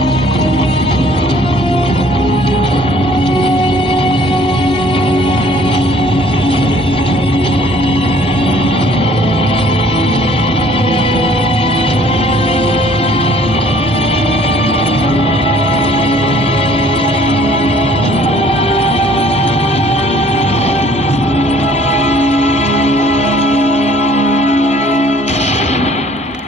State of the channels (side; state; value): both; normal; correlation 0.57